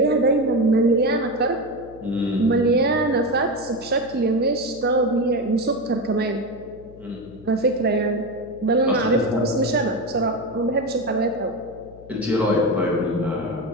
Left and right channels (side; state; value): left; noise; hum, 21 dB below the sound